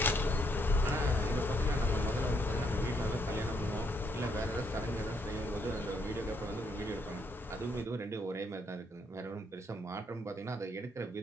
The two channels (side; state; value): both; normal; correlation 0.73